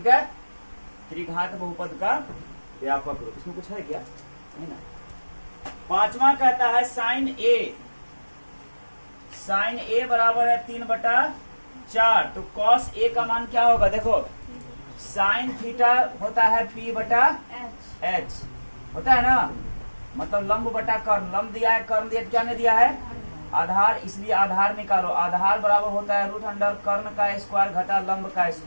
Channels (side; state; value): both; inverted; correlation -1.00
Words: है। त्रिघात बहुपद का व्यापक रूप, इसमें कुछ है क्या, नहीं ना। पांचवा कहता है साइन a बराबर है 3/4, तो कॉस a का मान क्या होगा, देखो साइन थीटा होता है p बटा h होता है ना, मतलब लंब बटा कर्ण, लंब दिया है, कर्ण दिया, क्या नहीं दिया है, आधार, इसलिए आधार निकालो, आधार बराबर होता है √अंडर कर्ण का स्क्वायर घटा लंब का